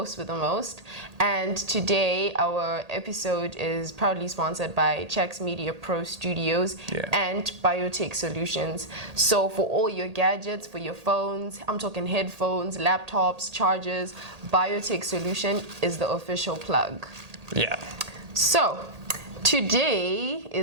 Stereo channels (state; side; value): late; left; 1.8 ms